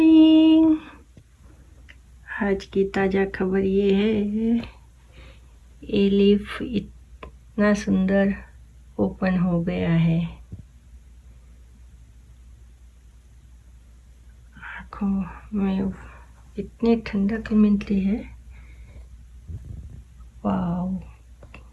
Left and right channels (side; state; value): both; identical; correlation 1.00